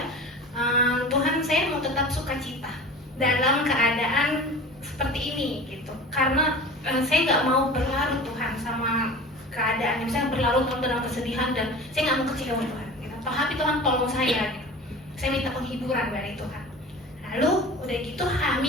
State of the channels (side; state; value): both; normal; correlation 0.37